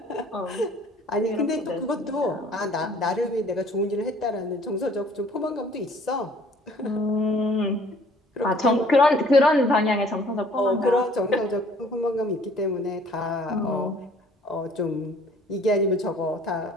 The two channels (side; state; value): both; normal; correlation 0.56